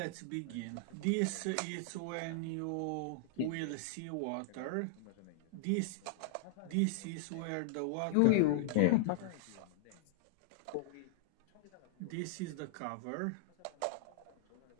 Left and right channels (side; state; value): both; different; correlation -0.01